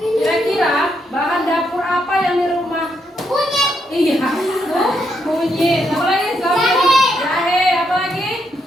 bahan dapur apa yang di rumah? Kunyit. Iya, kunyit. Apa lagi? Jahe. Apa lagi?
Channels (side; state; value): both; normal; correlation 0.78